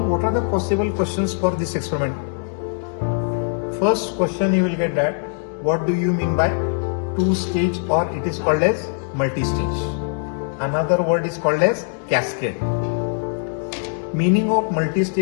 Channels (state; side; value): silent; right; 64 dB below the other